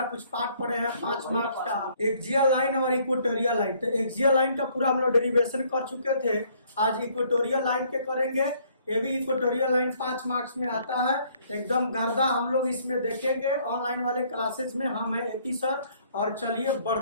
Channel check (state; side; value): inverted; both; correlation -0.63